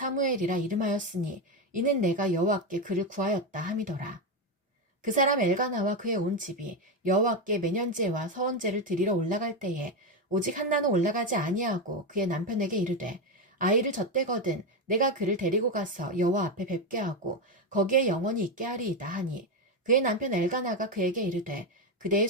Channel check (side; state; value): both; normal; correlation 0.10